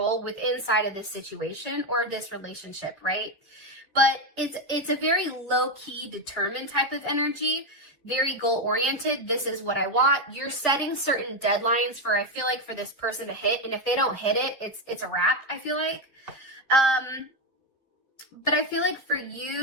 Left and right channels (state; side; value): normal; both; correlation 0.08